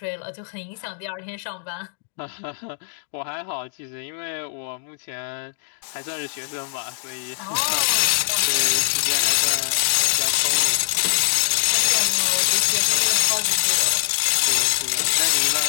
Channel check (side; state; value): right; silent; digital silence